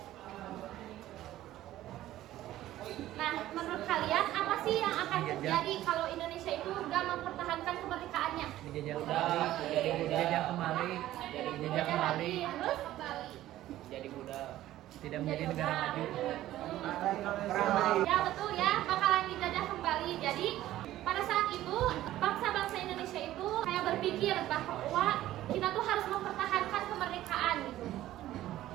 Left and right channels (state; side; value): quieter; left; 14.3 dB